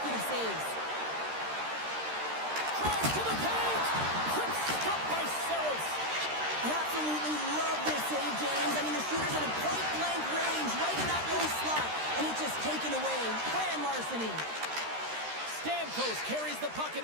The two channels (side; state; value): left; late; 13 ms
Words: saves. Drive to the paint! Quick stop by Settles. I absolutely love this save, James. I mean, the shooter's in a point-blank range, right in that low slot, and it's just taken away. Grand larceny. Stamkos carries the puck